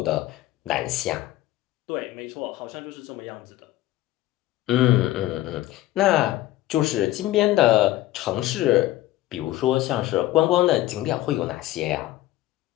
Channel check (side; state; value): right; quieter; 15.7 dB